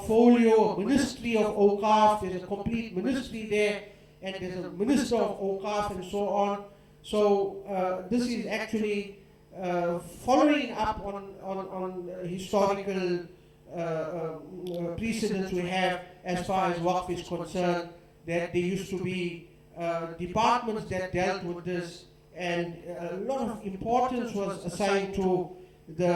ministry of Awqaf. There's a complete ministry there, and there's a minister of Awqaf and so on. So this is actually following up on historical precedents we have as far as Waqf is concerned, that there used to be departments that dealt with this, and a lot of importance was assigned to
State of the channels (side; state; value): both; identical; correlation 1.00